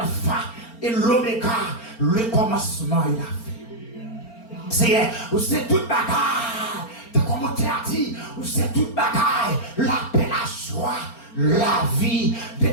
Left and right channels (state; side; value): late; right; 4.4 ms